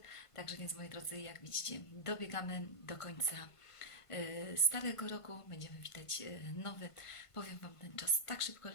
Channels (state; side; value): late; right; 1.5 ms